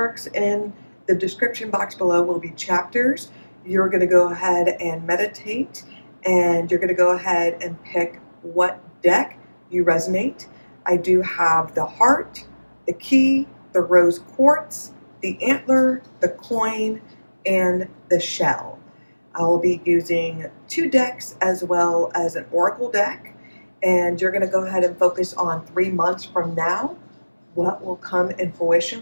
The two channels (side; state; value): both; inverted; correlation -1.00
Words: in the description box below will be chapters. You're going to go ahead and meditate, and you're going to go ahead and pick what deck you resonate. I do have the heart, the key, the rose quartz, the antler, the coin, and the shell. I will be using 2 decks as well as an oracle deck, and you're going to go ahead and focus on 3 months from now. What will come in